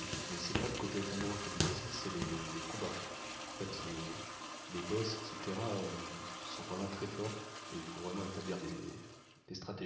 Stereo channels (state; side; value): identical; both; correlation 1.00